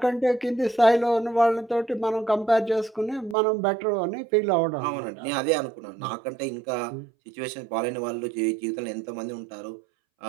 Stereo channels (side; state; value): left; drops out; at 3.4 s